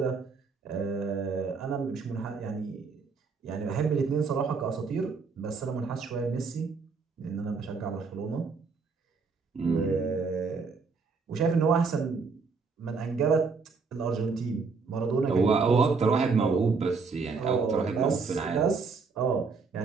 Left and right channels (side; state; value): left; quieter; 4.8 dB